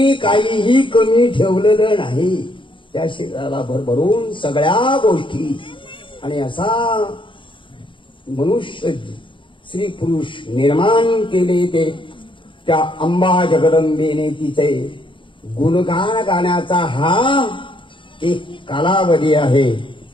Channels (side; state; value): right; late; 0.24 ms